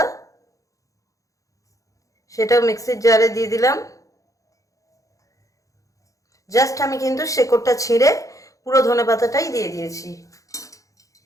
সেটাও মিক্সির জারে দিয়ে দিলাম। জাস্ট আমি কিন্তু শেকড়টা ছিঁড়ে পুরো ধনে পাতাটাই দিয়ে দিয়েছি।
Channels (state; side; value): late; right; 0.16 ms